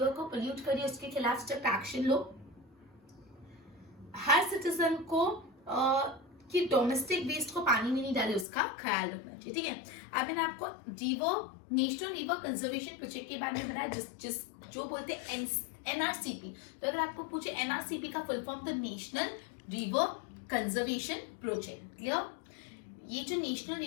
को पोल्यूट करे उसके खिलाफ स्ट्रिक्ट एक्शन लो। हर सिटीजन को कि डोमेस्टिक वेस्ट को पानी में नहीं डाले उसका ख्याल रखना चाहिए, ठीक है। अब मैंने आपको नेशनल रिवर कंजर्वेशन प्रोजेक्ट के बारे में बताया, जिस जो बोलते हैं एनआरसीपी। तो अगर आपको पूछे एनआरसीपी का फुल फॉर्म, तो national river conservation project, clear. ये जो national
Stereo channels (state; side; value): drops out; right; at 8.5 s